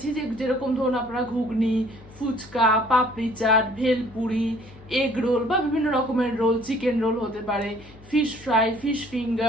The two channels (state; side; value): noise; left; hum, 22 dB below the sound